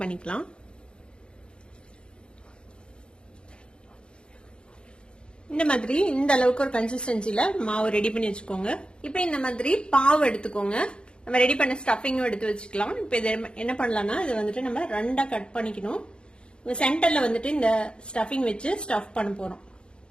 பண்ணிக்கலாம். இந்த மாதிரி இந்த அளவுக்கு ஒரு கன்சிஸ்டன்சில மாவு ரெடி பண்ணி வச்சுக்கோங்க. இப்ப இந்த மாதிரி பாவு எடுத்துக்கோங்க. நம்ம ரெடி பண்ண ஸ்டஃபிங்கும் எடுத்து வச்சுக்கலாம். இப்ப இதை என்ன பண்ணலாம்னா இது வந்துட்டு நம்ம 2ஆ கட் பண்ணிக்கணும். சென்டர்ல வந்துட்டு இந்த ஸ்டஃபிங் வச்சு ஸ்டஃப் பண்ண போறோம்.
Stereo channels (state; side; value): late; right; 0.053 ms